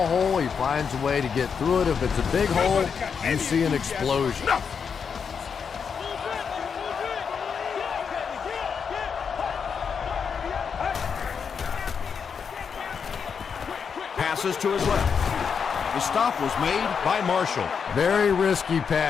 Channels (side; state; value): right; quieter; 6.4 dB